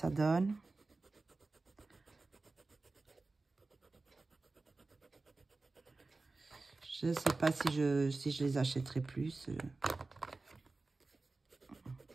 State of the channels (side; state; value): left; quieter; 3.5 dB